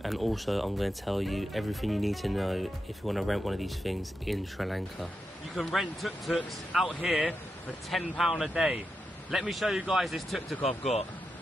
and also I'm going to tell you everything you need to know if you want to rent one of these things in Sri Lanka. You can rent tuk-tuks out here for £10 a day. Let me show you guys this tuk-tuk I've got.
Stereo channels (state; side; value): normal; both; correlation 0.87